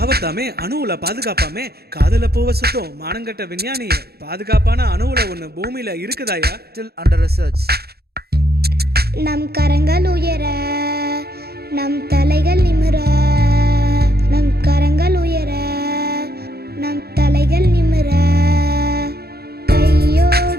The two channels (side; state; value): left; late; 0.46 ms